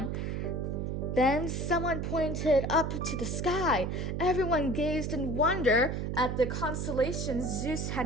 Then someone pointed up to the sky. Everyone gazed in wonder at the constellation Zeus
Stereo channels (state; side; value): noise; right; hum, 2 dB below the sound